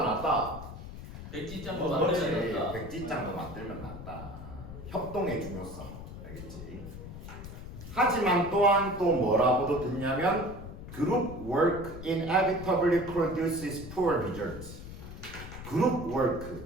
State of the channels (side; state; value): left; noise; rumble, 11 dB below the sound